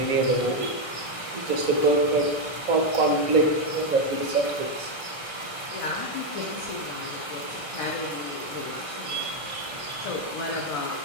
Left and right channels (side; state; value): right; late; 1.6 ms